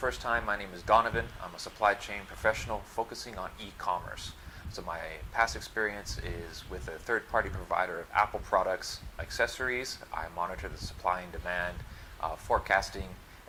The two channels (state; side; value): identical; both; correlation 1.00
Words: time, my name is Donovan. I'm a supply chain professional focusing on e-commerce. So my past experience is with a third-party provider of Apple products, accessories. I monitor the supply and demand, forecasting,